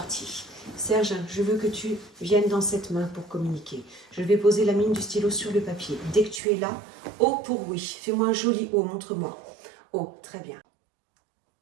Serge, je veux que tu viennes dans cette main pour communiquer. Je vais poser la mine du stylo sur le papier. Dès que tu es là, O pour oui. Fais-moi un joli O, montre-moi. O, très bien.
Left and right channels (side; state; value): left; drops out; at 6.4 s